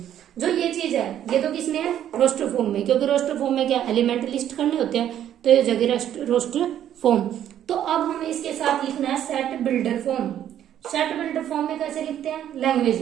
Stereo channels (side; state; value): left; quieter; 10.8 dB